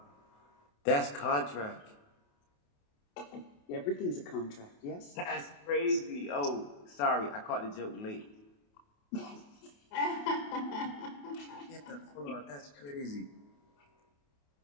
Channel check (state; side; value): late; right; 28 ms